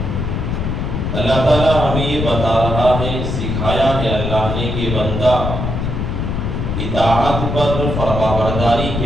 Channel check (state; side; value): noise; left; rumble, 2 dB below the sound